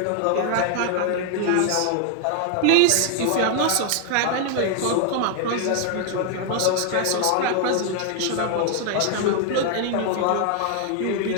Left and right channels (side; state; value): both; different; correlation 0.00